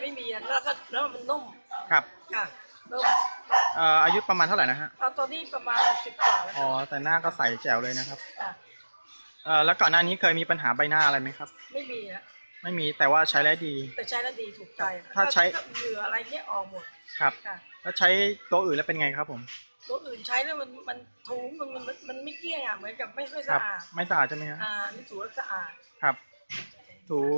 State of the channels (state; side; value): inverted; both; correlation -1.00